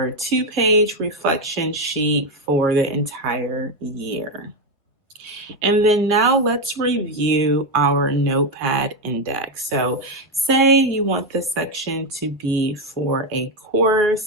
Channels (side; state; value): both; normal; correlation 0.08